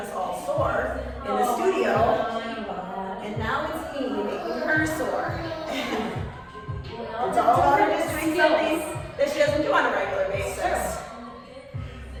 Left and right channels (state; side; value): identical; both; correlation 1.00